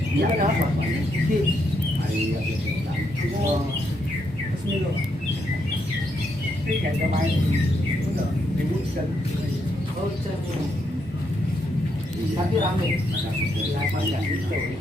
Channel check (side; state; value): both; normal; correlation 0.78